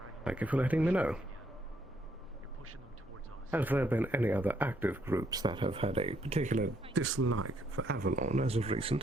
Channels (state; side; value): normal; both; correlation 0.72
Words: Thank you for letting me know. Have there been any other active groups that have had a particular dislike for Avalon as of